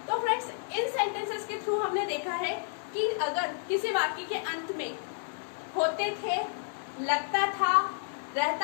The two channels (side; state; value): right; silent; digital silence